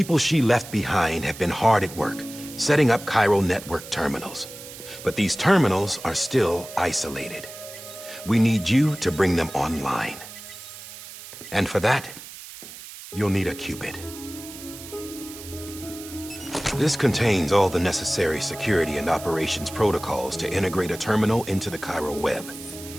she left behind have been hard at work, setting up chiral network terminals. But these terminals are still isolated. We need you to bring them online. And for that, you'll need a Cupid. This contains all the necessary security and operations protocols to integrate a terminal into the chiral web.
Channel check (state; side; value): noise; right; hiss, 14 dB below the sound